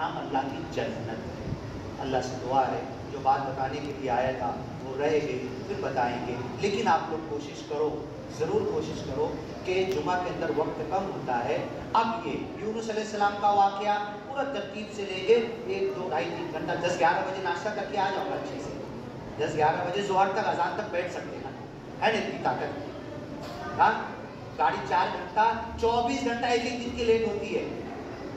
اللہ کی جنت ہے۔ اللہ سے دعا ہے جو بات بتانے کے لیے آیا تھا وہ رہے گی پھر بتائیں گے، لیکن آپ لوگ کوشش کرو، ضرور کوشش کرو کہ جمعہ کے اندر وقت کم ہوتا ہے، اب یہ یونس علیہ السلام کا واقعہ پورا ترتیب سے لیں گے، 1 2 2.5 3 گھنٹہ 10 11 بجے ناشتہ کر کے آ جاؤ گا اچھے سے، 10 11 بجے ظہر تک اذان تک بیٹھ سکتے ہیں، ہے نا اتنی طاقت؟ ہاں گاڑی 4 گھنٹہ 24 گھنٹہ ایک ایک دن کی لیٹ ہوتی ہے،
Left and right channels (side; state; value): both; identical; correlation 1.00